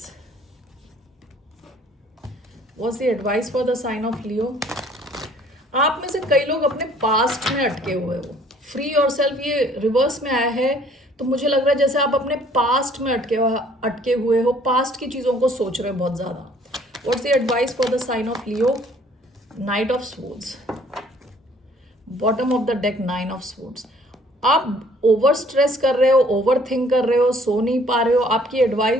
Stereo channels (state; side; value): normal; both; correlation 0.58